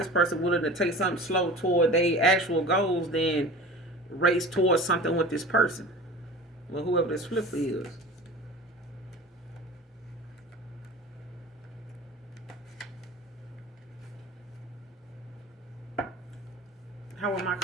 person willing to take something slow toward their actual goals, then race towards something with this person. Well, whoever this flipper is. How will my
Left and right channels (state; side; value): normal; both; correlation 0.37